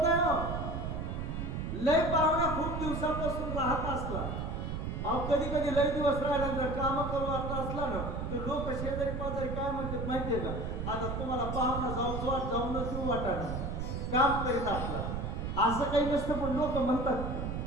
नाही. लय पाहुणा खूप दिवसापासून राहत असला, अहो कधी कधी लय दिवस राहिल्यानंतर काम करू आता असला ना तर लोक शेजारी पाजारी काय म्हणतात माहितीये का, आता तुम्हाला पाहुणा जाऊनच देऊ वाटाणा काम करीत असला. असं काही नसतं पण लोक म्हणतात.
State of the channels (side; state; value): right; noise; rumble, 4 dB below the sound